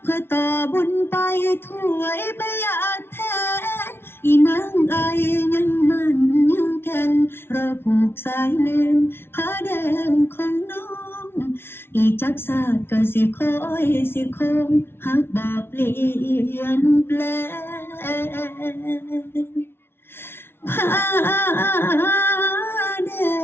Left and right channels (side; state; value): right; late; 0.11 ms